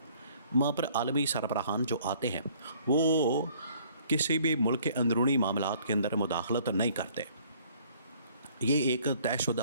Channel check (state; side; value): inverted; both; correlation -0.58